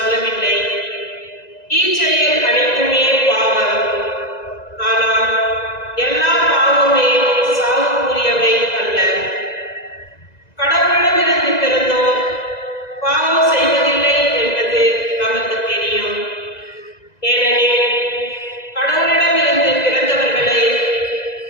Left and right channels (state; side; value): late; right; 2.0 ms